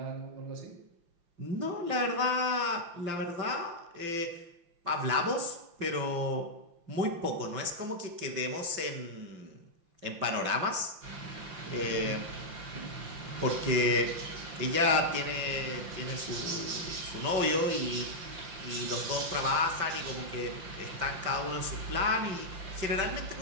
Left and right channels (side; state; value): left; late; 5.8 ms